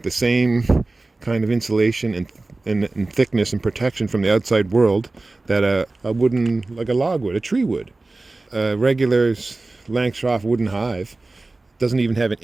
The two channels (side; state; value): left; quieter; 3.2 dB